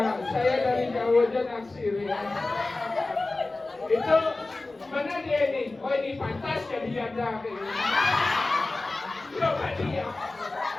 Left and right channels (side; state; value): right; quieter; 3.2 dB